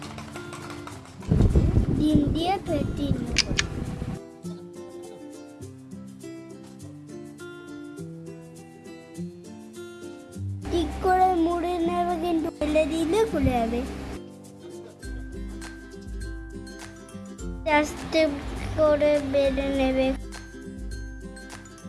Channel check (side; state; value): both; identical; correlation 1.00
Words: ডিম দিয়ে ফেটিয়ে নেব। ঠিক করে মুড়ে নেবে, কিন্তু ফেলে দিলে খুলে যাবে। আস্তে করে বেলে নেবে।